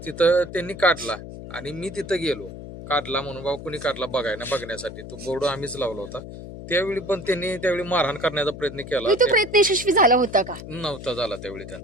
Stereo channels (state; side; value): noise; left; hum, 12 dB below the sound